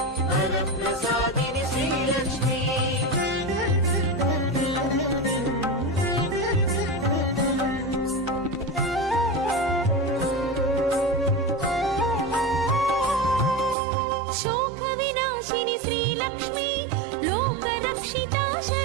वरप्रसादिनि श्रीलक्ष्मी शोकविनाशिनि श्रीलक्ष्मी लोकरक्षिता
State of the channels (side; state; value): left; drops out; at 13.8 s